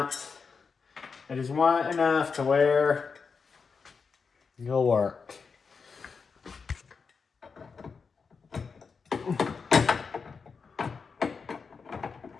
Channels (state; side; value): quieter; right; 5.3 dB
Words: enough to where it'll work.